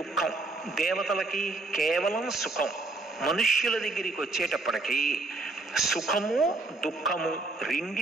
దుఃఖం. దేవతలకి కేవలం సుఖం. మనుష్యుల దగ్గరికి వచ్చేటప్పటికీ సుఖము దుఃఖము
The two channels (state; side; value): quieter; left; 3.4 dB